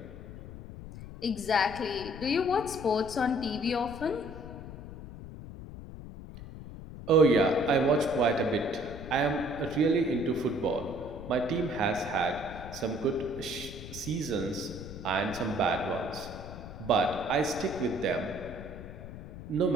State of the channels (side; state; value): left; noise; rumble, 12 dB below the sound